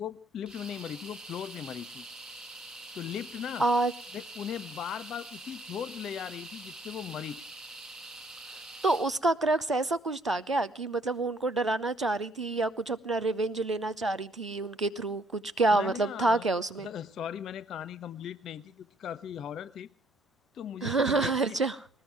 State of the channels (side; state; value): both; normal; correlation 0.64